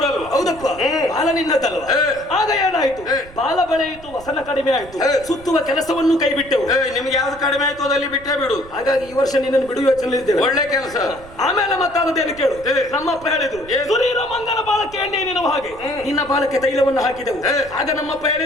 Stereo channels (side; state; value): right; noise; rumble, 19 dB below the sound